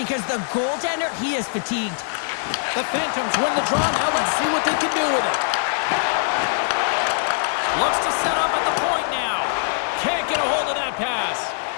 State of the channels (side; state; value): right; silent; digital silence